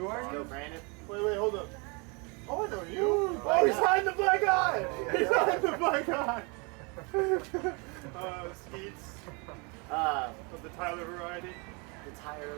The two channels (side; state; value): left; quieter; 31.1 dB